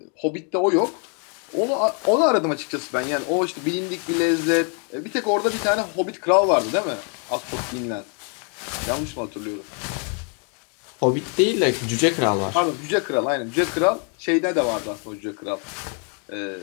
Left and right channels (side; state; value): right; quieter; 38.9 dB